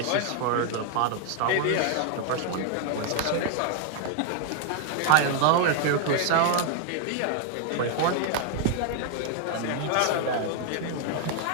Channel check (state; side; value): different; both; correlation 0.00